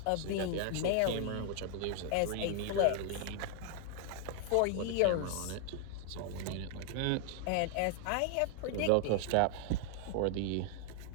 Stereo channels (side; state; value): both; different; correlation 0.00